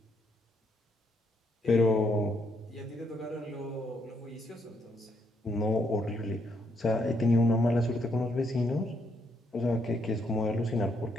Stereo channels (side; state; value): both; normal; correlation 0.74